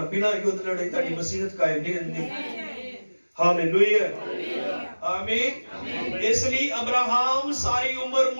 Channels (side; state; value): both; inverted; correlation -1.00